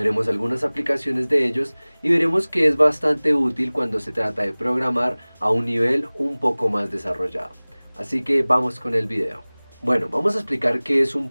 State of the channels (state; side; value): inverted; both; correlation -1.00